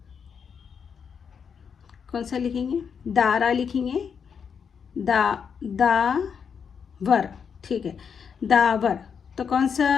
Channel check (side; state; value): right; quieter; 6.7 dB